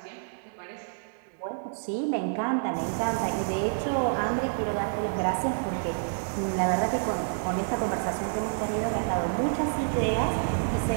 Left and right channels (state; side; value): silent; left; digital silence